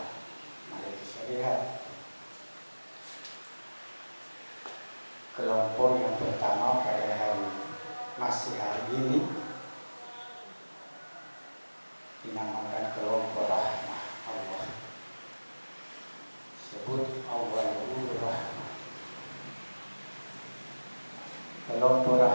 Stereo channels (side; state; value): both; inverted; correlation -1.00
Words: mari kita lihat kelompok yang pertama pada masih hari ini dinamakan kelompok rahmah Allah. Sebut awalul rahmah. Kelompok